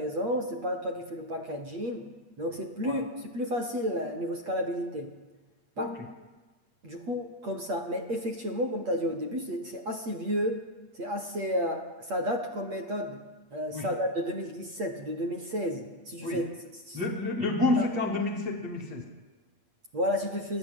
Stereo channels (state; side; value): late; left; 8.5 ms